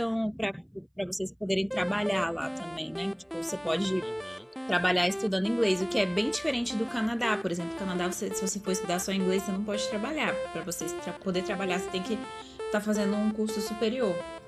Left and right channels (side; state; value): both; identical; correlation 1.00